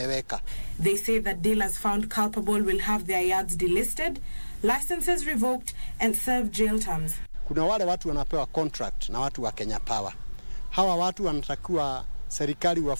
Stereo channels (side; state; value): both; inverted; correlation -1.00